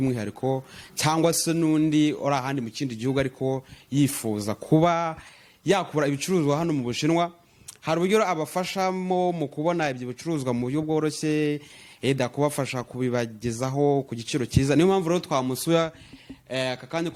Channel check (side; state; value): both; identical; correlation 1.00